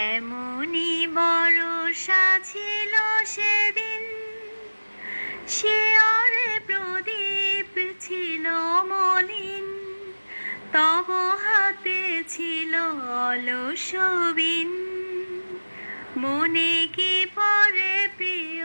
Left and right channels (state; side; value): inverted; both; correlation -1.00